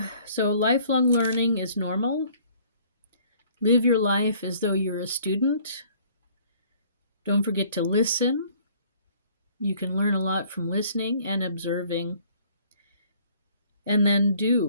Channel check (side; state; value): both; inverted; correlation -0.57